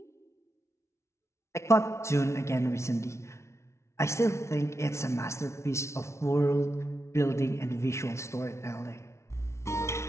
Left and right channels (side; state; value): right; late; 0.13 ms